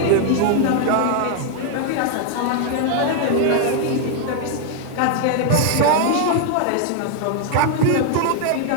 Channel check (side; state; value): both; different; correlation 0.00